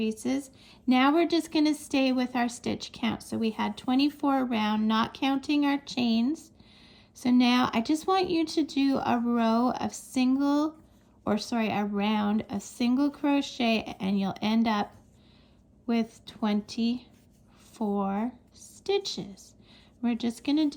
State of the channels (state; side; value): identical; both; correlation 1.00